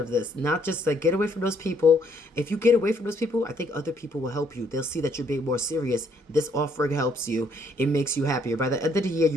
this. Not just like get away from those people. If you get away from those people, I think other people will help you. They'll see that you're being more serious. This offering helps you. It makes you happier. By the end of the year,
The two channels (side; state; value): both; normal; correlation 0.68